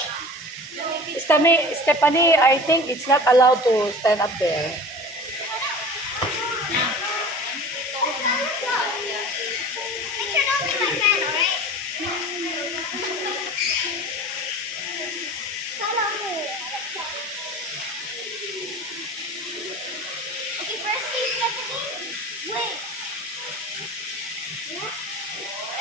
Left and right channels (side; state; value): both; normal; correlation 0.38